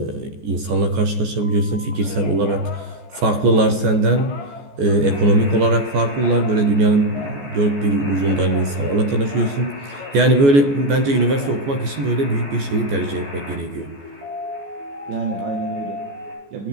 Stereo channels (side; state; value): left; late; 14 ms